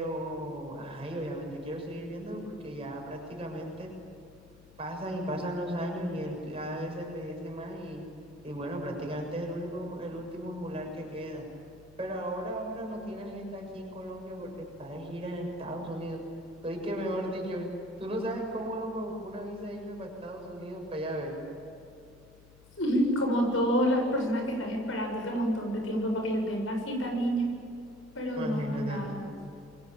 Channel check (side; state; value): left; noise; hum, 23 dB below the sound